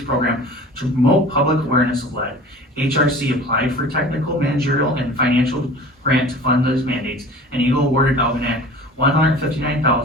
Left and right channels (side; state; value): both; normal; correlation 0.41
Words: program to promote public awareness of lead. HRC applied for technical, managerial, and financial grant to fund those mandates, and Eagle awarded Algonac